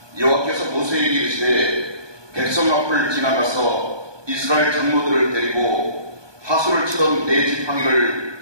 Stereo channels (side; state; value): left; late; 1.2 ms